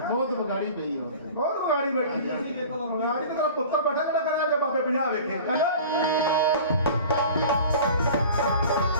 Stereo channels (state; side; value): inverted; both; correlation -0.40